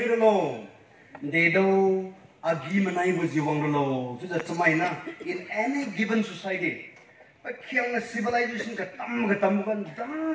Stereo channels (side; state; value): both; identical; correlation 1.00